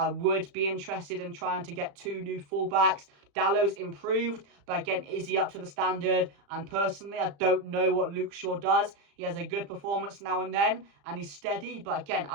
would be interested in trying to get 2 new fullbacks. Dallow's improved, but again, is he up to the standard? And personally, I don't know what Luke Shaw does. He has a good performance now and then, and he's steady. But again,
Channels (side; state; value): left; late; 35 ms